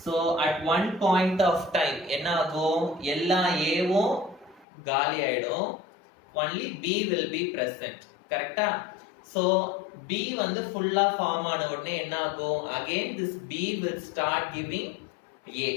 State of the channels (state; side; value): drops out; right; at 4.7 s